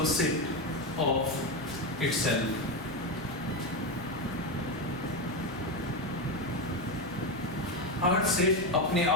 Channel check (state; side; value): normal; both; correlation 0.12